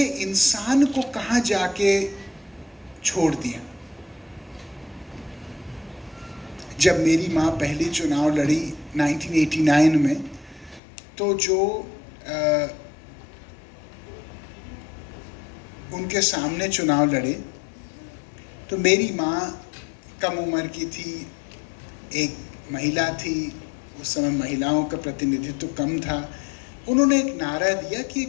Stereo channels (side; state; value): right; drops out; at 10.8 s